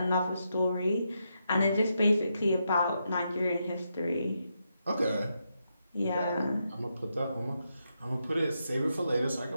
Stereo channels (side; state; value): both; inverted; correlation -0.83